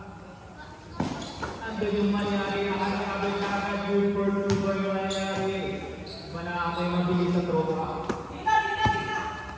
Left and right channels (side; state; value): both; identical; correlation 1.00